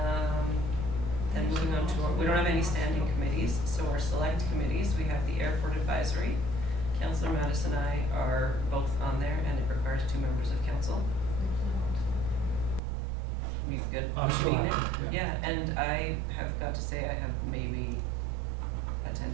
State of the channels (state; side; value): drops out; left; at 12.8 s